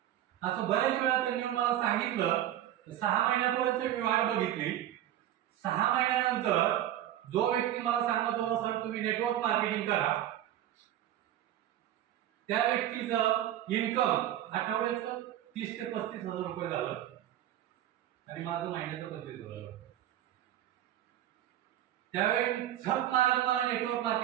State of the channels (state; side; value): quieter; left; 12.3 dB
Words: असं बऱ्याच वेळा त्यांनी मला सांगितलं. 6 महिन्यापर्यंत मी वाट बघितली. 6 महिन्यानंतर जो व्यक्ती मला सांगत होता सर तुम्ही नेटवर्क मार्केटिंग करा, त्या व्यक्तीचं इन्कम आठवड्याचं 30 ते 35,000 रुपये झालं आणि माझं महिन्याचं 25,000. त्यावेळी झक मारत मला नेटवर्क